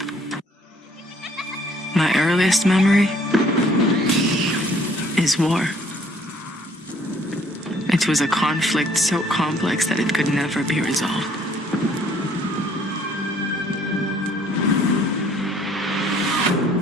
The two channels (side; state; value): both; normal; correlation 0.61